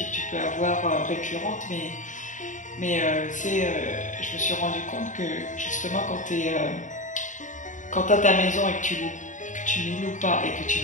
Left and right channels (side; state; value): right; late; 0.36 ms